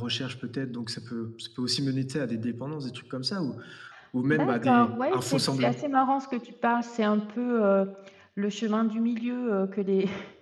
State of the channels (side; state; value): both; identical; correlation 1.00